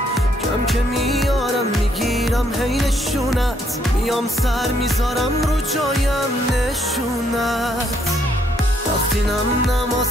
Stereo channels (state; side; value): normal; both; correlation 0.71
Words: کم که میارم میگیرم هی نشونت، میام سر میذارم رو جایم نشونت. وقتی نم